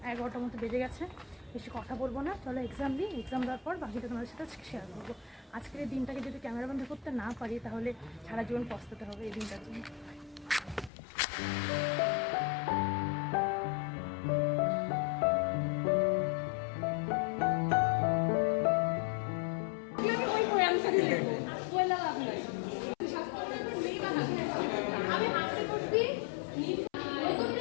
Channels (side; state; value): right; drops out; at 10.9 s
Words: 11টার মতো বেজে গেছে। বেশি কথা বলবো না, চলো এক্সাম দিই। এক্সাম দেওয়ার পর বাকিটা তোমাদের সাথে শেয়ার করবো। আজকের এই দিনটাকে যদি ক্যামেরাবন্দি করতে না পারি তাহলে সারা জীবন পস্তাতে হবে এই দিনটার জন্য।